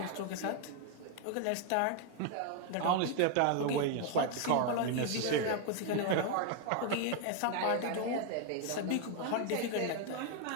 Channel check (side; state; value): both; different; correlation 0.00